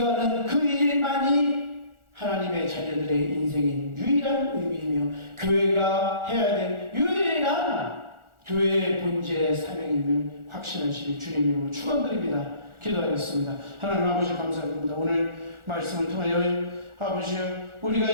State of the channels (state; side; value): late; left; 1.4 ms